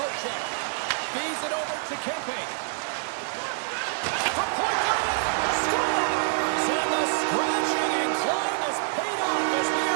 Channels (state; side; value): silent; left; digital silence